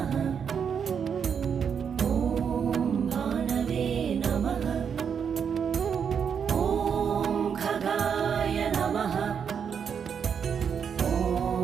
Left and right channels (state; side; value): quieter; left; 7.2 dB